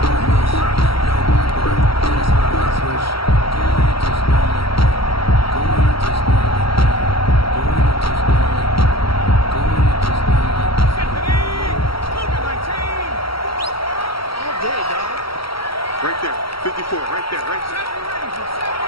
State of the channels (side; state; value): right; late; 0.75 ms